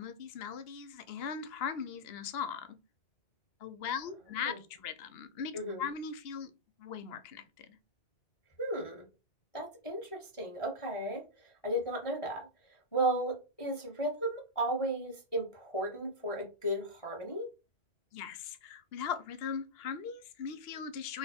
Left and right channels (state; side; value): late; right; 2.8 ms